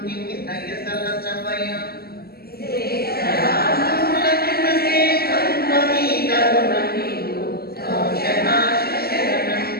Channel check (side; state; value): right; late; 0.45 ms